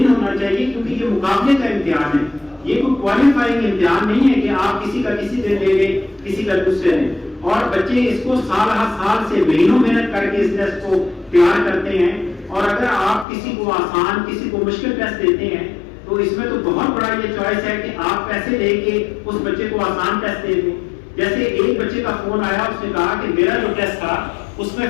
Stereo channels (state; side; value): drops out; right; at 13.2 s